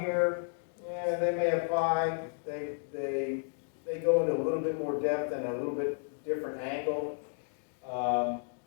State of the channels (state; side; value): silent; right; digital silence